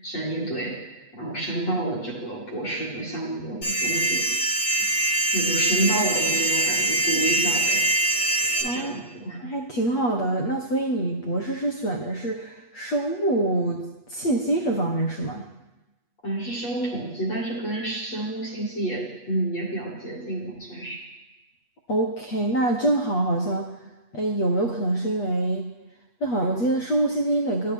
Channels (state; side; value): late; right; 8.3 ms